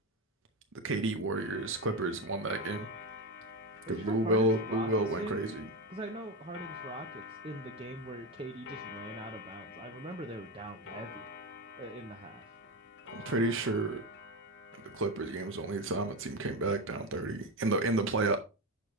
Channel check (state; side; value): normal; both; correlation 0.16